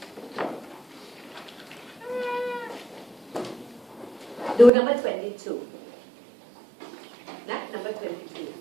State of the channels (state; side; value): drops out; left; at 4.7 s